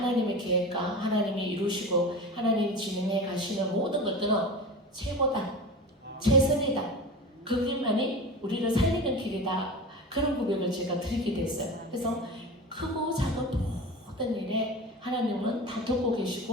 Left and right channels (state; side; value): normal; both; correlation 0.31